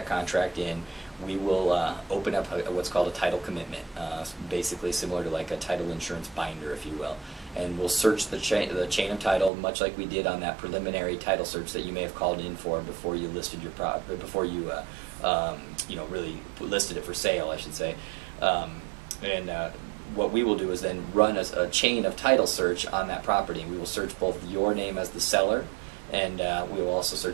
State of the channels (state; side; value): drops out; left; at 9.5 s